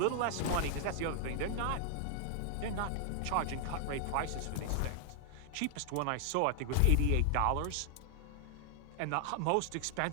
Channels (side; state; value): both; different; correlation 0.00